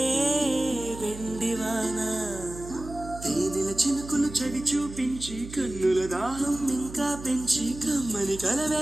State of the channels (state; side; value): noise; right; hum, 13 dB below the sound